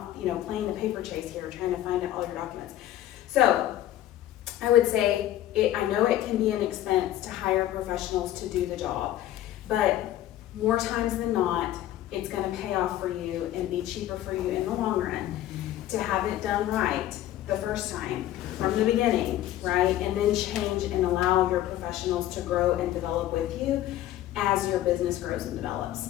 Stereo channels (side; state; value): right; quieter; 13.3 dB